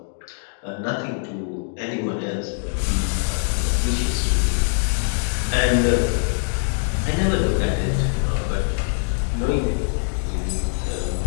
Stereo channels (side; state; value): right; silent; digital silence